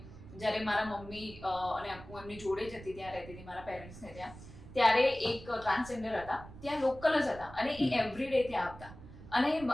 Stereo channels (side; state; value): right; noise; rumble, 16 dB below the sound